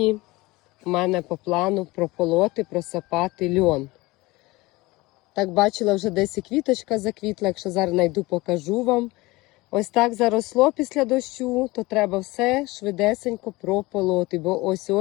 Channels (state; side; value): quieter; right; 21.5 dB